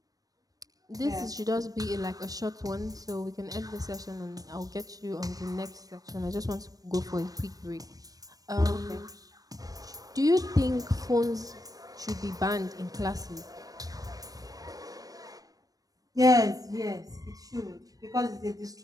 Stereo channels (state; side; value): late; left; 0.18 ms